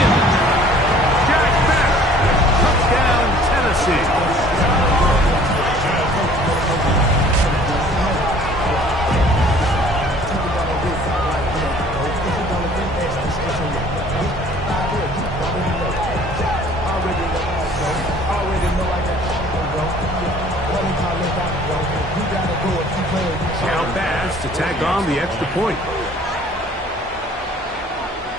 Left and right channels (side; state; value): both; normal; correlation 0.53